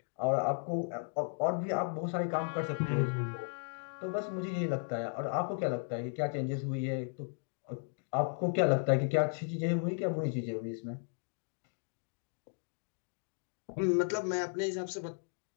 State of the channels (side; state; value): right; silent; 54 dB below the other